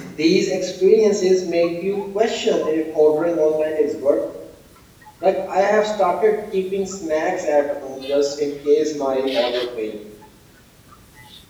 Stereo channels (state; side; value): identical; both; correlation 1.00